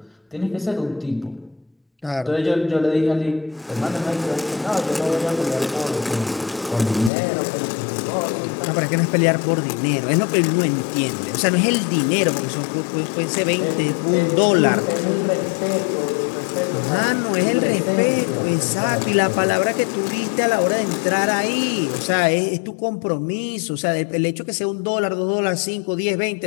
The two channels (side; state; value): right; drops out; at 7.1 s